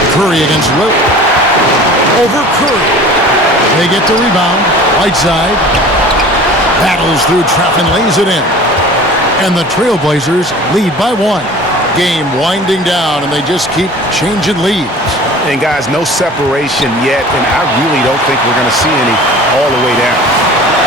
Curry against Lillard. Over Curry. They get the rebound. Right side. Battles through traffic and lays it in. And the Trailblazers lead by 1. Game winding down, and they just keep changing leads. And guys, no separation yet, and I really don't think we're going to see any all the way down.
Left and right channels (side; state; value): both; normal; correlation 0.43